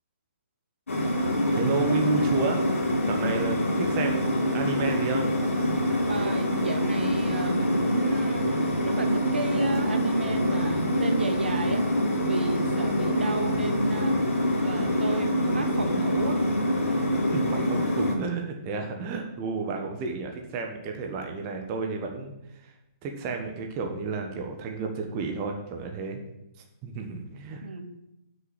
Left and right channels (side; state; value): both; inverted; correlation -0.68